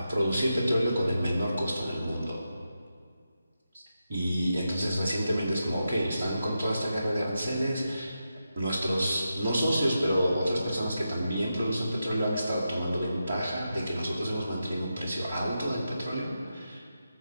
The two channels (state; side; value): inverted; both; correlation -0.88